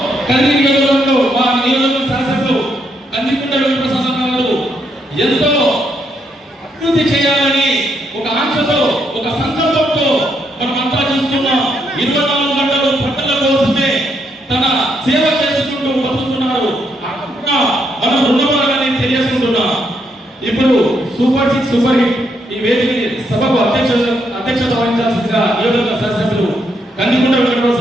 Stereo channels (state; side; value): normal; both; correlation 0.76